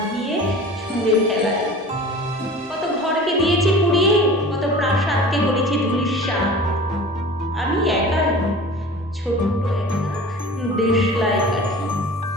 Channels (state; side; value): normal; both; correlation 0.40